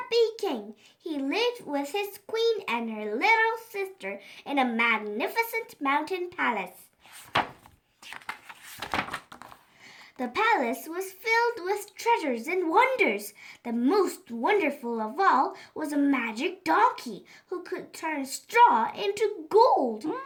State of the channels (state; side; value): identical; both; correlation 1.00